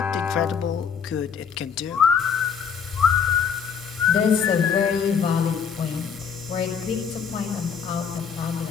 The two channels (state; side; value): quieter; right; 7.0 dB